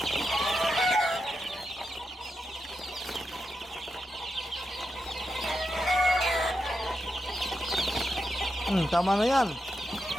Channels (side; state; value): both; normal; correlation 0.87